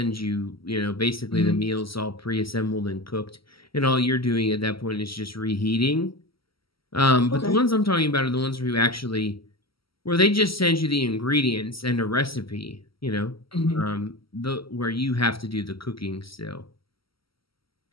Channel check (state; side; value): late; right; 0.75 ms